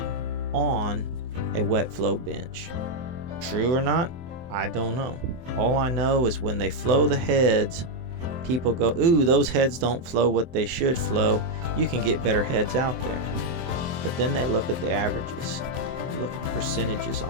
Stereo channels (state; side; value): late; left; 23 ms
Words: on a wet flow bench. True or not, I don't know. All I know is when they flow the heads, people go, ooh, those heads don't flow what they should flow. You can get better heads out there. But then they look at the averages. Look at the percentages